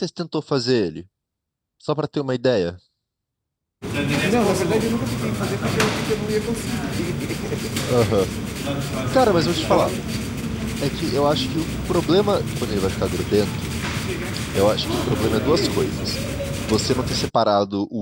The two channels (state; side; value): identical; both; correlation 1.00